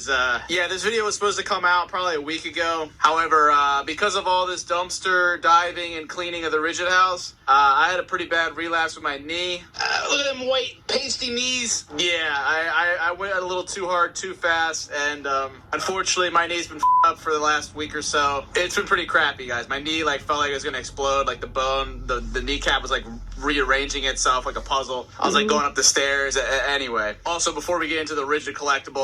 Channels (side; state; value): both; identical; correlation 1.00